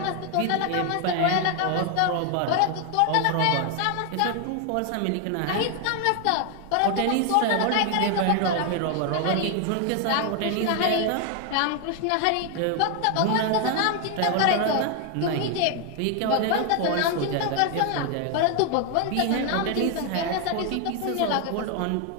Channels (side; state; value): both; different; correlation 0.00